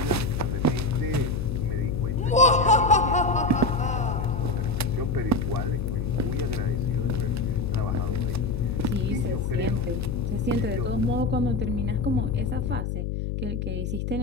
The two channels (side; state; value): left; noise; hum, 2 dB below the sound